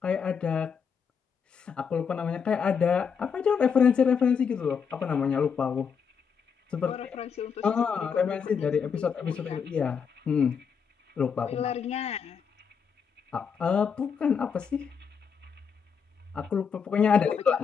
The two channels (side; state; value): right; quieter; 6.6 dB